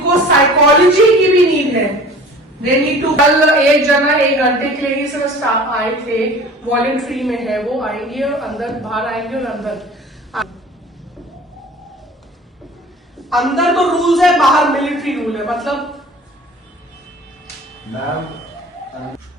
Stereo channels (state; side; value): normal; both; correlation 0.44